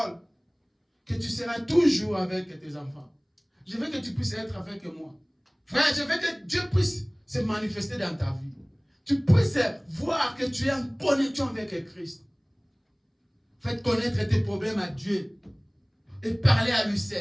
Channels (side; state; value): both; identical; correlation 1.00